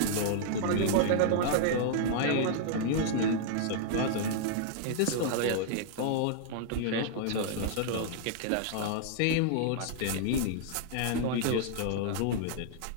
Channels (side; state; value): both; different; correlation -0.01